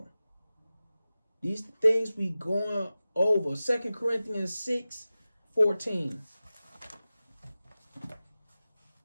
These things we going over. 2 Corinthians 6:14.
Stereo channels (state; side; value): inverted; both; correlation -0.96